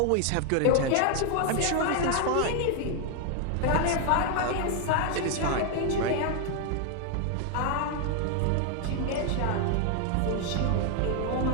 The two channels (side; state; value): both; different; correlation 0.00